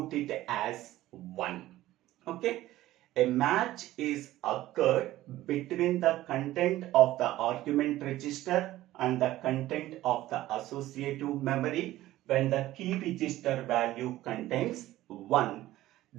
it as 1. Okay, a match is occurred between the content of the argument register and the content of the associative memory. When the key register value contains 1,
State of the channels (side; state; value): left; quieter; 15.5 dB